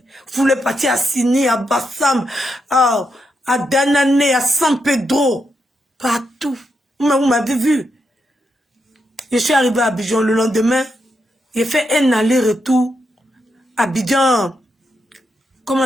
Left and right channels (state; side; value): normal; both; correlation 0.83